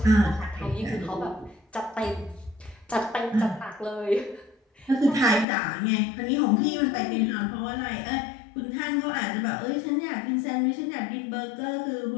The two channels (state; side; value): drops out; right; at 5.5 s